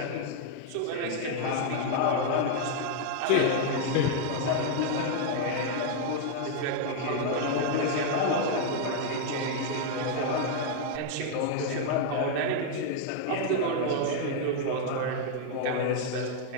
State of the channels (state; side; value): different; both; correlation 0.00